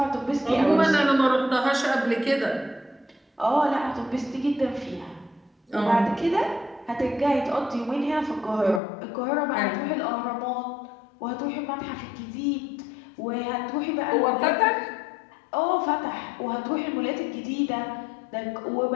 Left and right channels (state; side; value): drops out; right; at 8.8 s